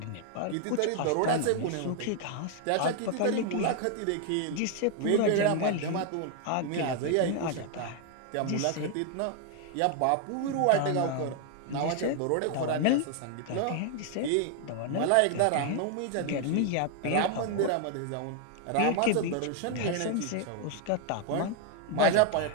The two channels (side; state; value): both; different; correlation 0.00